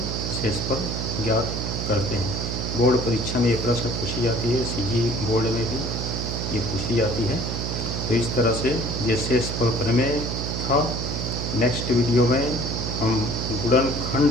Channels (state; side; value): noise; right; hum, 3 dB below the sound